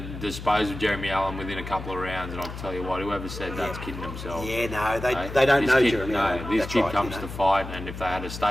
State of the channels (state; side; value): noise; left; hum, 10 dB below the sound